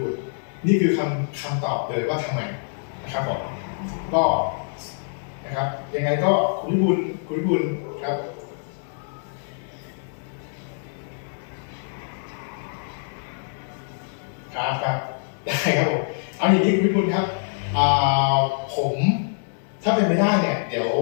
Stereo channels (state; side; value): silent; right; 60 dB below the other